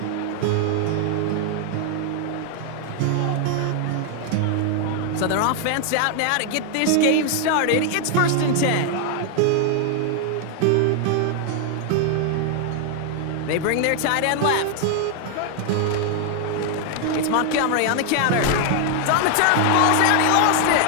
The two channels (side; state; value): both; different; correlation 0.00